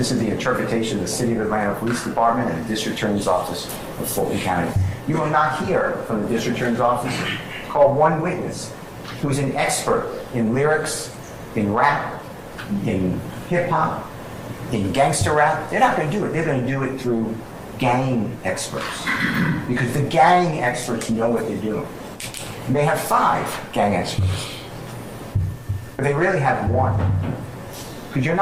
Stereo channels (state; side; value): identical; both; correlation 1.00